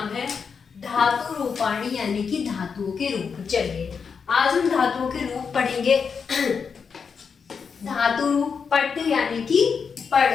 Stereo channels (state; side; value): quieter; right; 6.0 dB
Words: है धातु रूपाणी, यानी कि धातुओं के रूप। चलिए आज हम धातुओं के रूप पढ़ेंगे। धातु रूप पट यानी कि